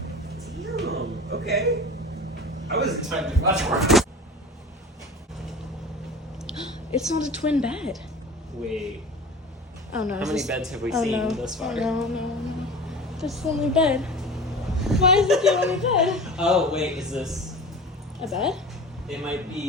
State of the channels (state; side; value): normal; both; correlation 0.35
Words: Damn, okay. I wasn't time to watch work. It's not a twin bed. Wait. Oh no. How many beds have we seen thus far? No. That's the only bed. Why is it the only bed? Oh, wait, is this a bed? It might